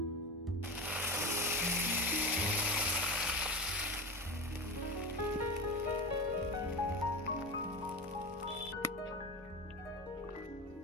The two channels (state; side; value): normal; both; correlation 0.24